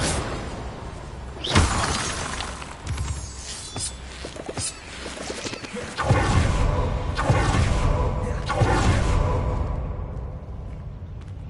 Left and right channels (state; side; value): identical; both; correlation 1.00